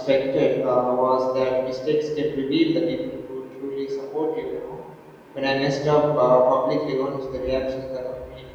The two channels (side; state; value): both; identical; correlation 1.00